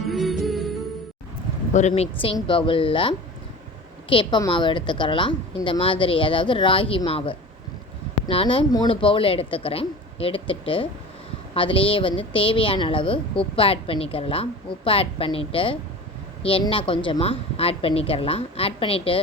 ஒரு மிக்சிங் பவுலில் கேப்ப மாவு எடுத்துக்கிறலாம். இந்த மாதிரி, அதாவது ராகி மாவு நான் 3 பவுல் எடுத்துக்கிறேன். எடுத்துட்டு அதுலேயே தேவையான அளவு உப்பு ஆட் பண்ணிக்கிறலாம். உப்பு ஆட் பண்ணிவிட்டு எண்ணெய் கொஞ்சமாக ஆட் பண்ணிக்கிறலாம். ஆட் பண்ணிவிட்டு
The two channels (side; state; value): both; normal; correlation 0.36